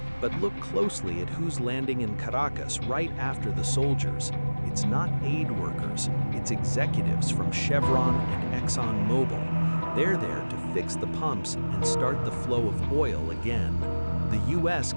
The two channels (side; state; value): both; inverted; correlation -1.00